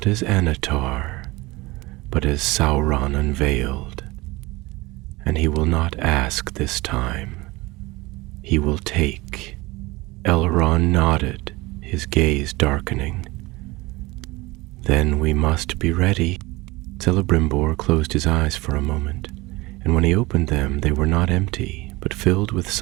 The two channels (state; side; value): quieter; left; 21.9 dB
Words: as Anatar, but as Sauron unveiled. And he will not ask this time. He will take." Elrond nodded, his gaze darkening. "Then we must be ready." Celebrimbor closed his eyes for a moment, and when he opened them they were not empty, but filled with